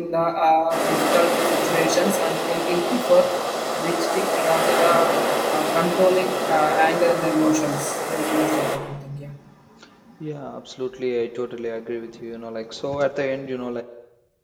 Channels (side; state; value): both; identical; correlation 1.00